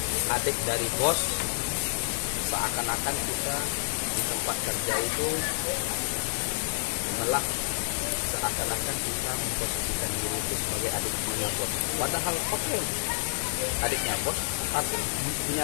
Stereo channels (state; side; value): silent; right; digital silence